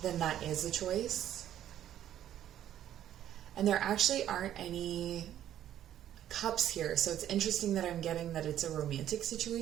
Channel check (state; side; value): quieter; left; 11.3 dB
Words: then that is a choice. And there actually aren't any cups here. So it's interesting that I'm getting that it's a romantic